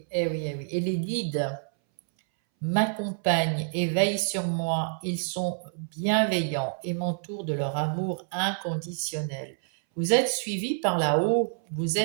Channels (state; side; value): silent; left; 60 dB below the other